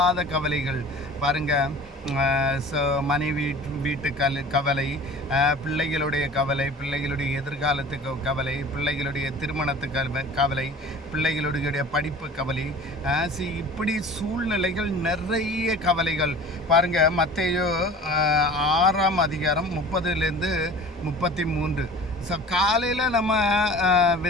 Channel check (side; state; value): both; normal; correlation 0.42